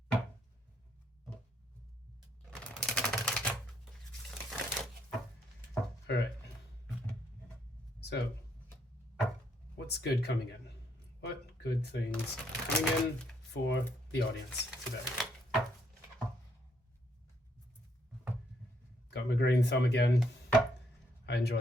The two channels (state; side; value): normal; both; correlation 0.72